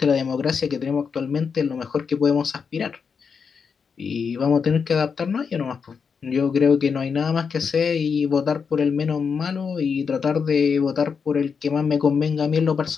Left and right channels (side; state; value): right; quieter; 6.0 dB